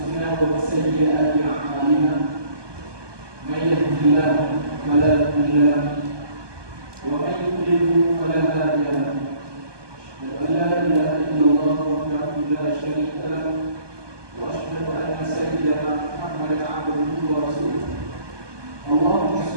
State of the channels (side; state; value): left; late; 1.2 ms